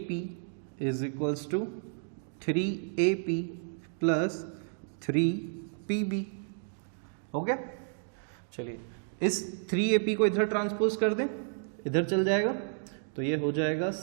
is equals to 3AP plus 3PB। हो गया। चलिए इस 3AP को इधर ट्रांसपोज कर दें, इधर चल जाएगा, तो ये हो जाएगा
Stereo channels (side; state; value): left; silent; digital silence